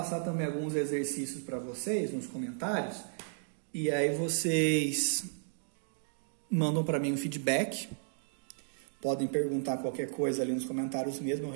também alguns exercícios para vocês nos comentários. E aí vocês mandam para mim um feedback. Podem perguntar qualquer coisa ali nos comentários mesmo, eu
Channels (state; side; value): silent; left; digital silence